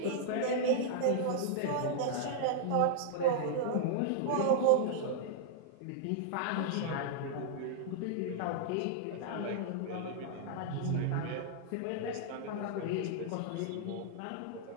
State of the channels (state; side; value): different; both; correlation -0.01